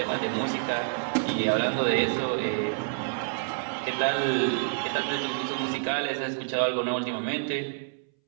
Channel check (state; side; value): silent; left; 59 dB below the other